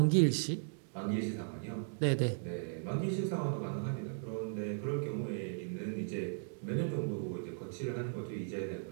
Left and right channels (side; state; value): left; silent; digital silence